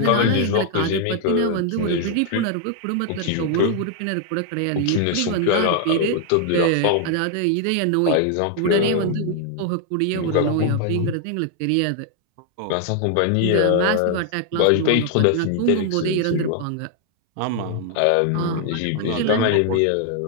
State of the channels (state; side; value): different; both; correlation 0.00